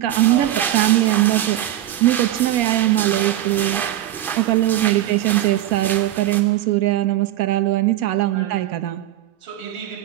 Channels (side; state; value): left; quieter; 13.6 dB